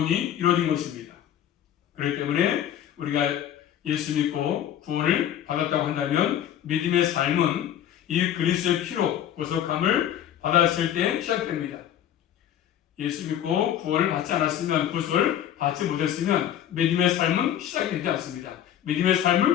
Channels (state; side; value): quieter; right; 10.7 dB